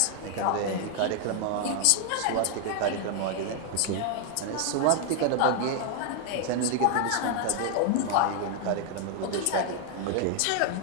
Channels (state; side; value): different; both; correlation 0.00